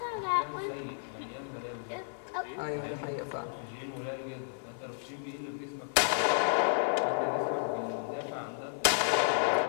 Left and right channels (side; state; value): right; silent; 56 dB below the other